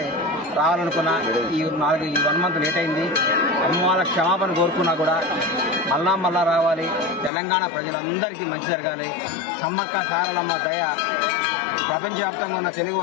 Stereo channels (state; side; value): drops out; right; at 7.3 s